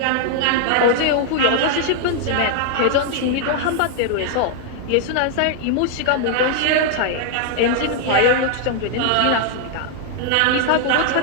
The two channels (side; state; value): both; different; correlation 0.00